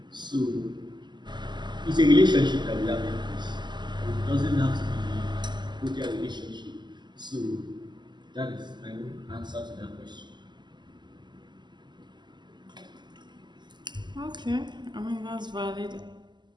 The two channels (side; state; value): left; late; 0.21 ms